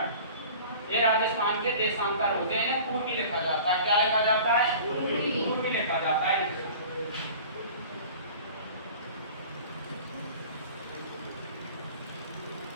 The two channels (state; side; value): inverted; both; correlation -0.42